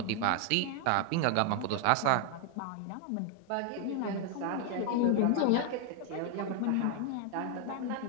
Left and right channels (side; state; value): both; different; correlation 0.00